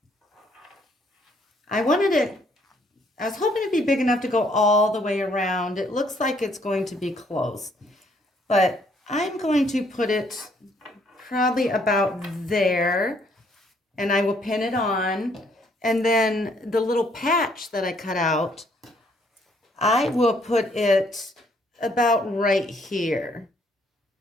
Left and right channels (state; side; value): normal; both; correlation 0.67